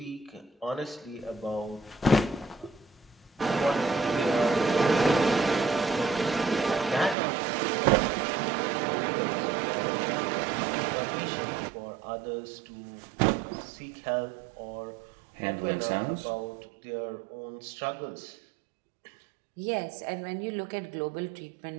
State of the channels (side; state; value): left; drops out; at 7.2 s